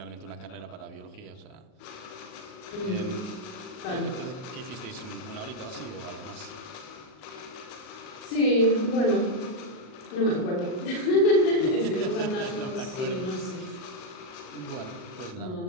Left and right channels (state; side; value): late; right; 38 ms